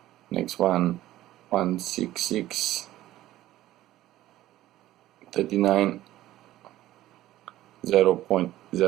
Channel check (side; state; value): left; quieter; 14.8 dB